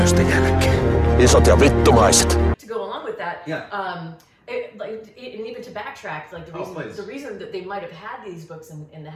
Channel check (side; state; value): both; identical; correlation 1.00